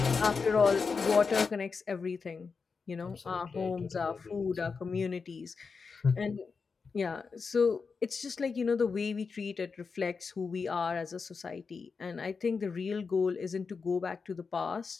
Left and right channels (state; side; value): quieter; right; 5.0 dB